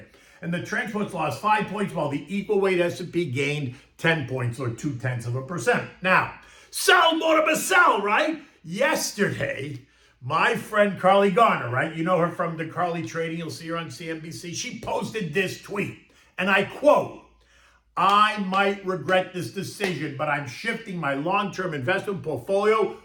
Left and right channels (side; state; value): both; identical; correlation 1.00